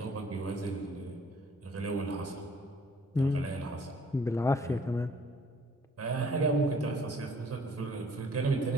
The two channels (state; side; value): normal; both; correlation 0.58